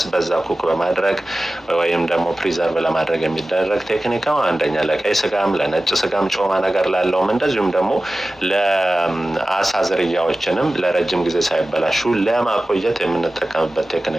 በዛ ኩክ በማድረግ ወይም ደግሞ ፕሪዘርቭ ለማድረግ የሚደረግ ቴክኒክ ነው። አንደኛ ለቀይ ስጋም ለነጭ ስጋም ጮማ ነገር ላለውም እንደዚሁም ደግሞ ለአሳ ዝርያዎችንም ለረጅም ጊዜ ሳይበላሹ ለማቆየት የምንጠቀምበት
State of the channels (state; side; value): normal; both; correlation 0.96